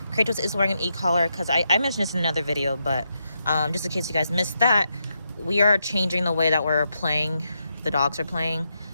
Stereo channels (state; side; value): inverted; both; correlation -0.83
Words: Kratos is wearing an e-collar because I mentioned this in another video, but just in case you guys missed that, we are changing the way that we're playing. The dogs are playing.